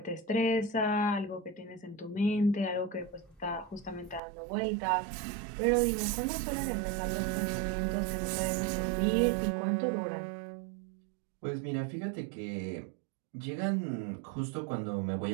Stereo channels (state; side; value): drops out; left; at 4.2 s